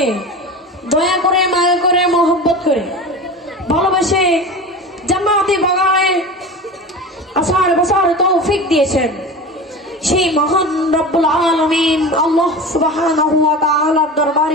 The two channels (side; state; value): both; normal; correlation 0.31